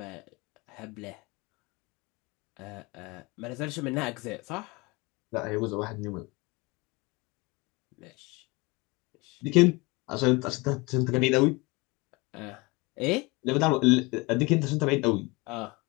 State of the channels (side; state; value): right; quieter; 25.2 dB